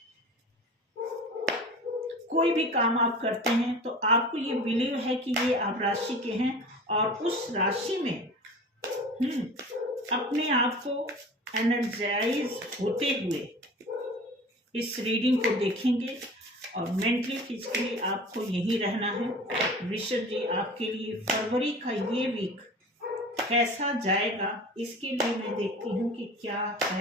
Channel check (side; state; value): both; normal; correlation 0.38